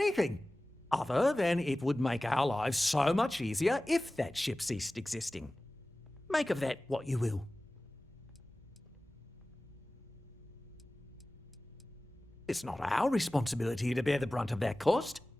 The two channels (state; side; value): normal; both; correlation 0.97